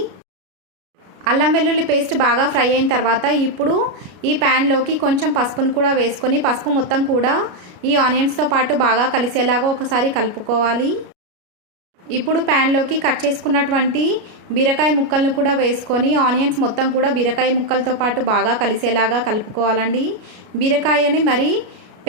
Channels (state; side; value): late; left; 33 ms